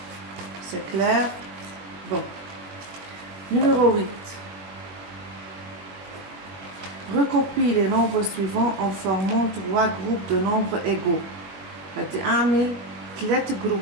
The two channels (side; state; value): left; late; 21 ms